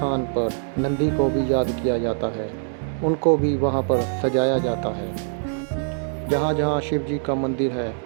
पर नंदी को भी याद किया जाता है, उनको भी वहाँ पर सजाया जाता है। जहाँ जहाँ शिव जी का मंदिर है,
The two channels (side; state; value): left; silent; 63 dB below the other